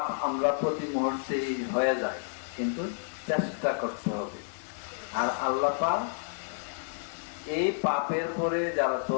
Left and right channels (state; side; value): silent; right; digital silence